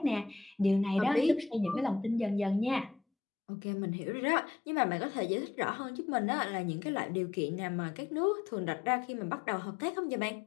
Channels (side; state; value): right; drops out; at 3.0 s